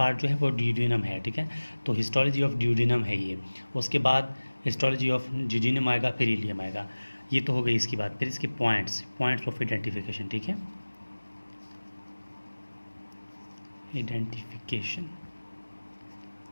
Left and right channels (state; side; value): inverted; both; correlation -1.00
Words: जो है वो ड्यूडिनम है, ठीक है। तो हिस्टोलॉजी ऑफ ड्यूडिनम है ये। उसके बाद हिस्टोलॉजी ऑफ जूजिनम आएगा, फिर इलियम आएगा। ये तो हो गई इसकी बात। फिर इसके पॉइंट्स ऑफ आइडेंटिफिकेशन, ठीक है, आइडेंटिफिकेशन,